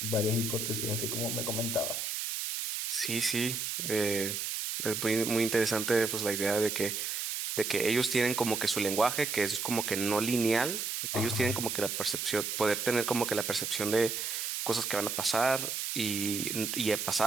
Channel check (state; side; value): noise; right; hiss, 2 dB below the sound